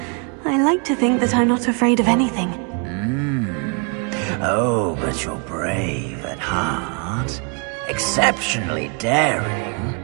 I like to think that I'm not afraid of anything. Oh, but you're brave at heart. Exceptionally daring.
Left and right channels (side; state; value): left; quieter; 37.0 dB